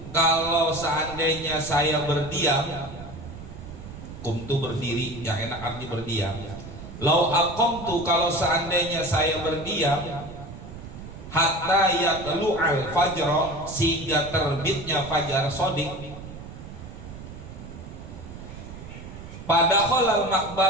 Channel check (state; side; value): noise; right; rumble, 13 dB below the sound